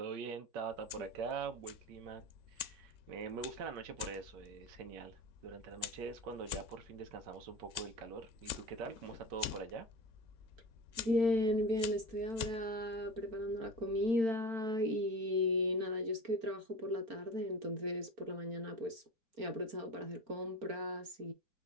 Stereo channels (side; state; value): left; late; 3.6 ms